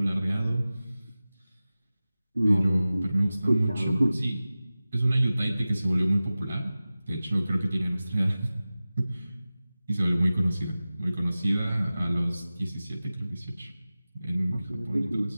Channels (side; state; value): both; inverted; correlation -0.96